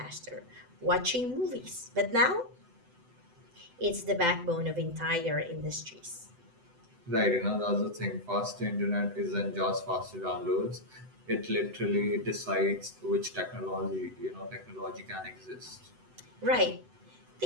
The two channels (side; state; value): left; late; 7.9 ms